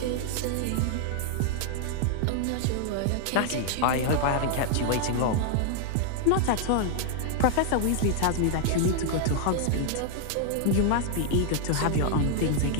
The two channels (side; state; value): both; different; correlation 0.00